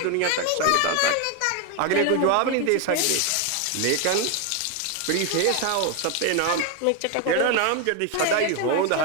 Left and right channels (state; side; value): different; both; correlation 0.01